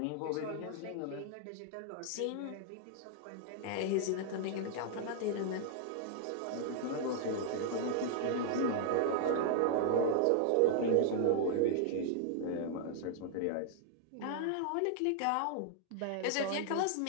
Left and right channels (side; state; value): both; different; correlation 0.00